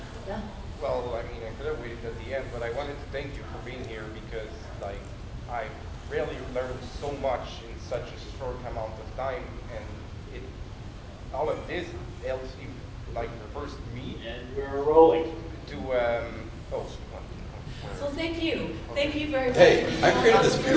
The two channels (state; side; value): identical; both; correlation 1.00